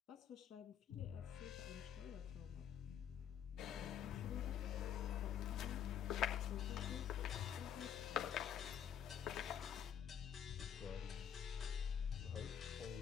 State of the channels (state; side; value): quieter; right; 9.0 dB